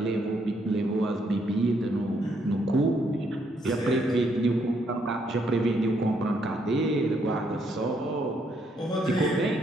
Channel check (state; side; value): normal; both; correlation 0.73